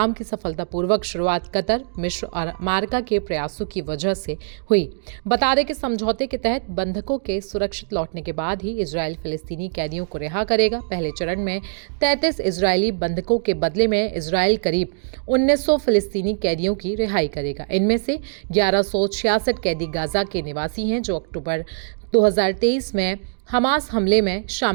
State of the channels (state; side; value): silent; left; digital silence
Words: की सफलतापूर्वक शुरुआत कतर, मिस्र और अमेरिका के प्रयासों की वजह से हुई। बता दें कि समझौते के तहत बंधकों के सुरक्षित लौटने के बाद ही इजराइल फिलिस्तीनी कैदियों को रिहा करेगा। पहले चरण में 33 इजरायली बंधकों के बदले में इजराइल करीब 1900 फिलिस्तीनी कैदियों की रिहाई करेगा। इनमें से 1166 कैदी गाजा के निवासी हैं जो अक्टूबर 2023 में हमास हमले में